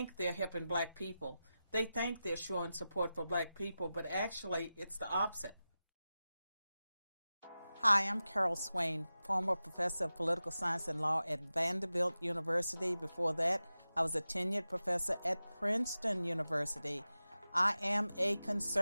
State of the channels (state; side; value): inverted; both; correlation -0.94